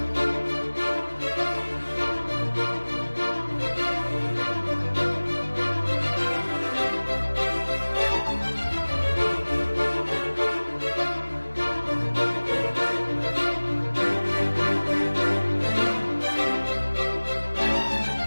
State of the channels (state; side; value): inverted; both; correlation -1.00